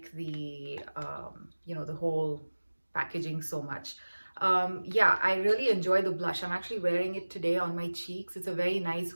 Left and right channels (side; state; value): both; inverted; correlation -1.00